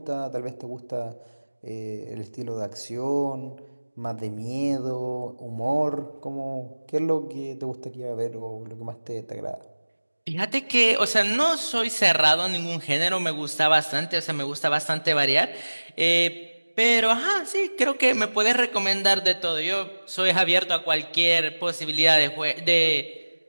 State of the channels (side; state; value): both; inverted; correlation -1.00